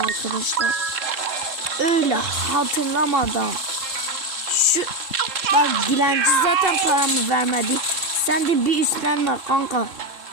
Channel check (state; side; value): late; left; 3.7 ms